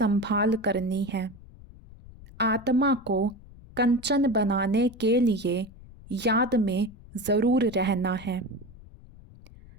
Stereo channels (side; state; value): left; noise; rumble, 20 dB below the sound